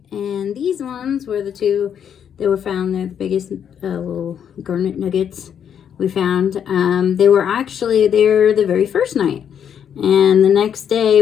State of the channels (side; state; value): right; quieter; 8.5 dB